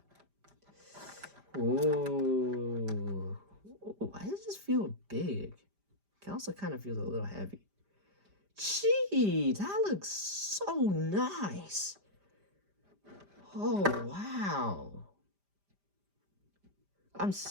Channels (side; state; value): left; late; 5.0 ms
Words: Ooh. Why does this feel big? It also kind of feels a little heavy. Gee, that looks so nice. Oh, wow. I'm